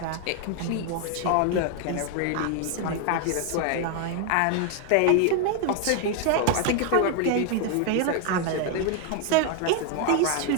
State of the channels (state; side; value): different; both; correlation 0.00